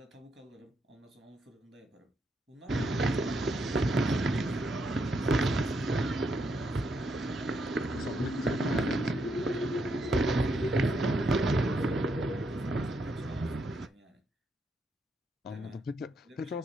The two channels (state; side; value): normal; both; correlation 0.77